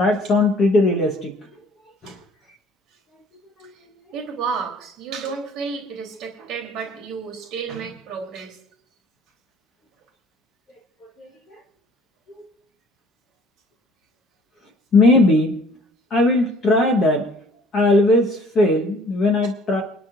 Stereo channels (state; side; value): normal; both; correlation 0.55